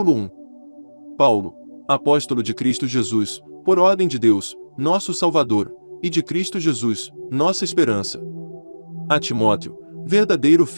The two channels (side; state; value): both; inverted; correlation -1.00